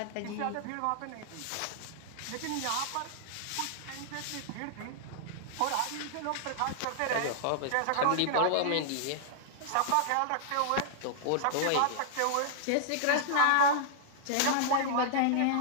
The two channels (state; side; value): different; both; correlation -0.01